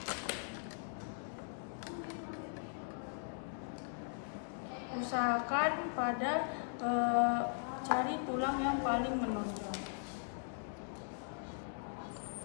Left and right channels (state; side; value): silent; right; digital silence